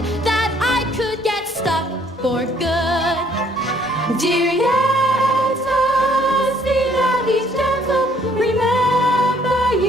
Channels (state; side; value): normal; both; correlation 0.63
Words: that I could get stuck for good. Dear Yetta, see that he's gentle. Remember